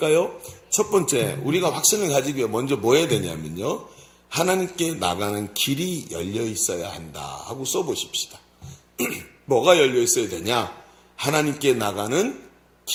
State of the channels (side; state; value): both; identical; correlation 1.00